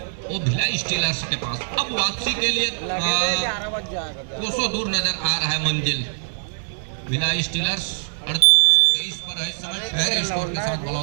वो भिलाई स्टीलर्स के पास। अब वापसी के लिए कोसों दूर नजर आ रहा है मंजिल। भिलाई स्टीलर्स 23 पर है इस समय फेयर स्कोर के साथ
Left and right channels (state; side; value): silent; left; 64 dB below the other